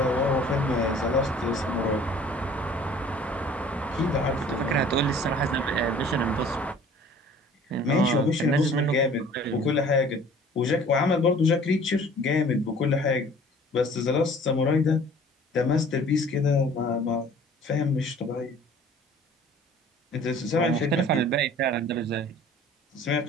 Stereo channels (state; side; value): normal; both; correlation 0.50